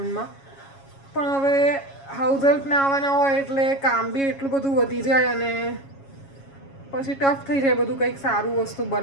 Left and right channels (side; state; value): right; late; 7.3 ms